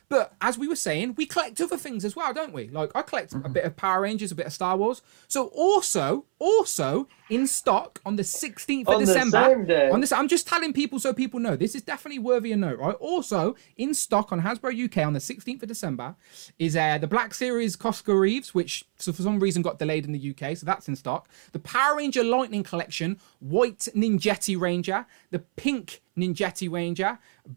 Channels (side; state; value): left; silent; 60 dB below the other